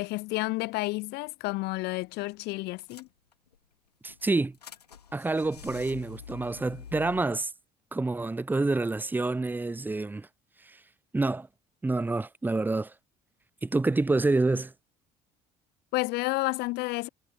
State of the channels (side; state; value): both; normal; correlation 0.70